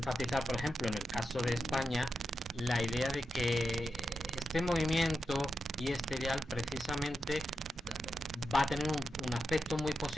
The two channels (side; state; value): both; normal; correlation 0.88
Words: por ejemplo, en el caso de España, la idea de que este movimiento y este ideal precisamente va a tener un aspecto muy